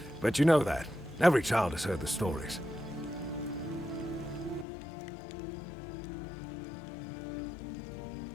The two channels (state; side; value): drops out; right; at 4.7 s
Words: you know that. Every child has heard the stories.